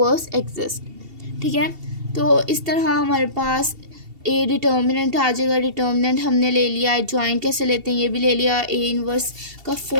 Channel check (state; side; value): late; left; 2.7 ms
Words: एग्जिस्ट। ठीक है, तो इस तरह हमारे पास ए डिटर्मिनेंट आ जाएगा। डिटर्मिनेंट हमने ले लिया, एडजॉइंट कैसे लेते हैं ये भी ले लिया। ए इन्वर्स का